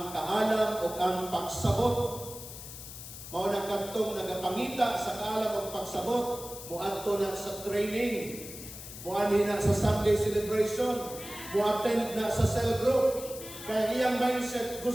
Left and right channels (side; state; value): left; noise; hiss, 12 dB below the sound